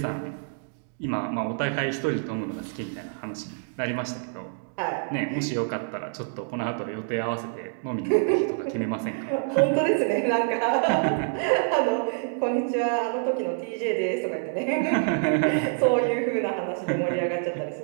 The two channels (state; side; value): silent; left; 60 dB below the other